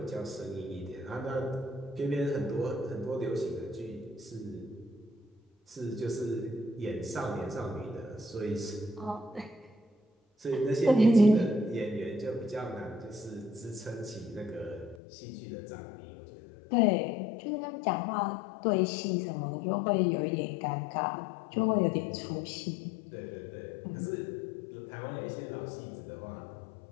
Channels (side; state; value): right; drops out; at 15.0 s